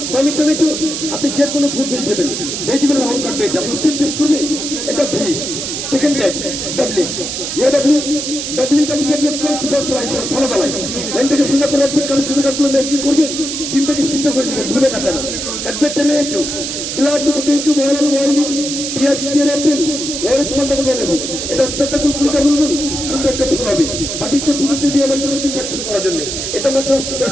টমেটো, আপনি যে কোনো ফুড ভেজিটেবল রাউন্ড কাটবে, এটা ফার্স্ট টাইম পেস্ট করবে, এটা ভি। সেকেন্ড টাইম ডাবলিং, ইয়ে ডাবলিং সুপার স্লাইস ফলো দালাই, লাইনটাকে সোজা করে রাখবেন, কারণ সোজা কাটগুলো ম্যাচিং করবেন, ডিমটাকে সিদ্ধ করে দেবেন, ভুলে কাটা না। কাটবেন টমেটো, গ্লাড পটেটো, বয়েল বয়েলিং, পেঁয়াজ, পেয়ার, অ্যাপেল, অরেঞ্জ মালটা করে নেবেন, এটা আস্তে কুলকুলিটা বলবেন, সুন্দর একটা ফুল হবে। বাটিতে পুজোতে বিয়ে বাড়ির জন্য ইনজেকশন করার জন্য এটা মাত্র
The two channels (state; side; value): noise; right; hiss, 4 dB below the sound